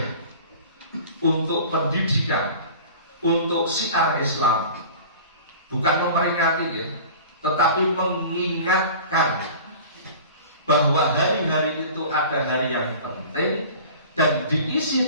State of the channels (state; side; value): inverted; both; correlation -0.40